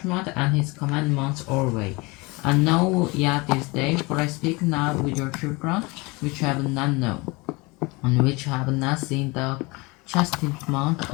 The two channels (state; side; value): quieter; right; 25.5 dB